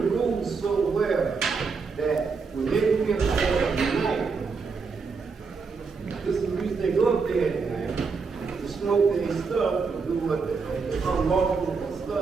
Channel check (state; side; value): quieter; left; 4.9 dB